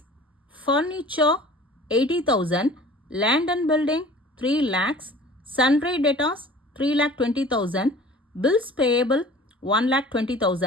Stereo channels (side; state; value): both; normal; correlation 0.45